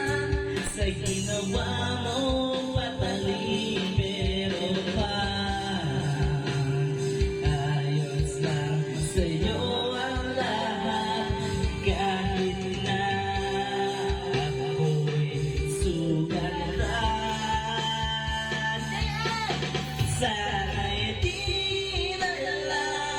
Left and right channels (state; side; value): identical; both; correlation 1.00